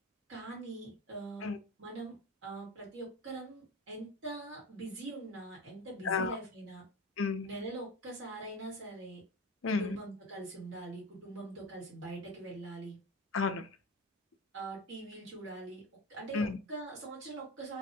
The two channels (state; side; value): normal; both; correlation 0.28